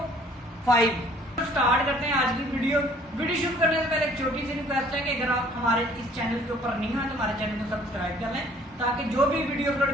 Start करते हैं आज की वीडियो शुरू करने से पहले एक छोटी सी रिक्वेस्ट है कि अगर आप हमारे इस चैनल के ऊपर नहीं हैं तो हमारे चैनल को सब्सक्राइब कर लें ताकि जो भी वीडियो अपलोड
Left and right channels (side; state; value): both; normal; correlation 0.56